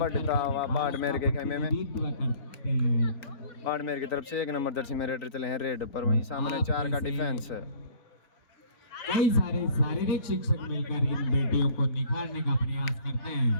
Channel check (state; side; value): late; right; 3.8 ms